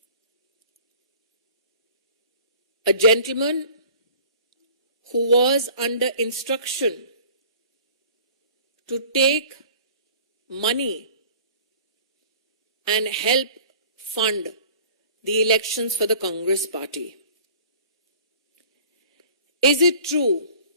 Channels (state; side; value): inverted; both; correlation -0.48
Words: A gentleman who was under instruction to take money and help fund the elections for the Congress party. Is it true